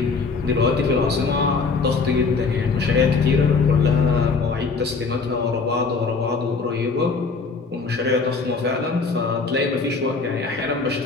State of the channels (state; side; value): quieter; right; 4.5 dB